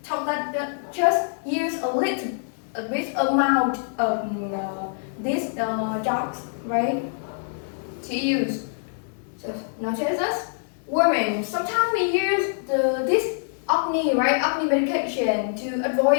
tell that just use a bit amount of these drugs, right? To use. So notice this. Women, sometimes we use this acne, right? Acne medication to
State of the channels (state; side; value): silent; right; digital silence